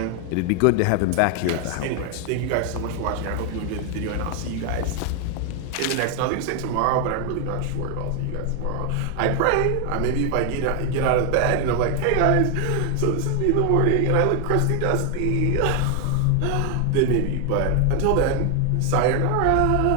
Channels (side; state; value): both; different; correlation 0.00